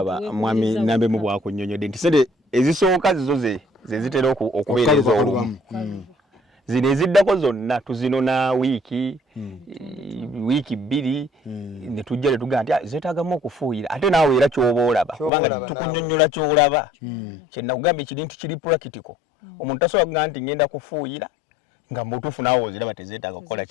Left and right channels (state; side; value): drops out; right; at 15.3 s